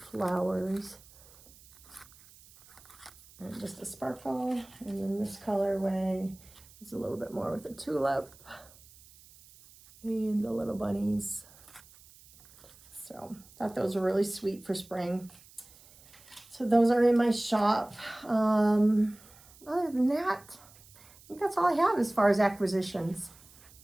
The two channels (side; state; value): right; noise; hiss, 24 dB below the sound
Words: And just a sparkle, and then this colorway is a little bit more with a tulip and the little bunnies. So thought those were really sweet for spring. So those are in my shop. Other than that, I think that's all I have as far as acquisitions.